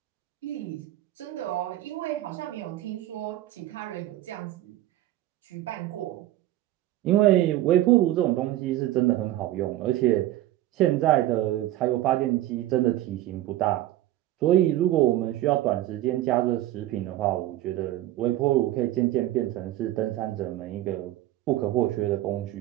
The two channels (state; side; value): quieter; left; 14.7 dB